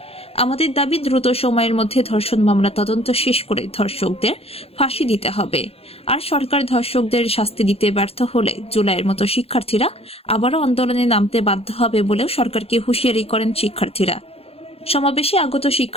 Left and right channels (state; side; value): late; right; 0.29 ms